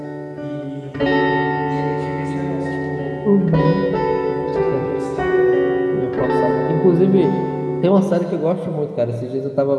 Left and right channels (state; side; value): identical; both; correlation 1.00